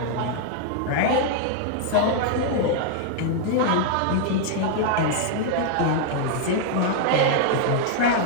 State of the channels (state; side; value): different; both; correlation 0.00